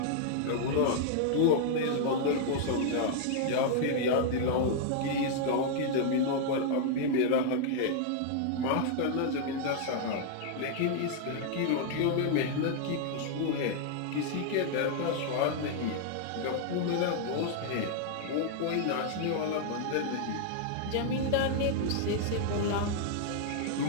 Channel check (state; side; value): different; both; correlation 0.00